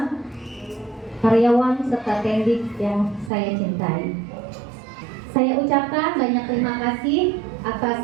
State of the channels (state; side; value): drops out; left; at 3.3 s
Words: karyawan serta tendik yang saya cintai. Saya ucapkan banyak terima kasih